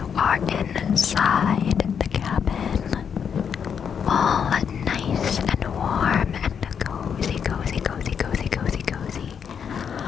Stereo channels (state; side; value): quieter; right; 7.3 dB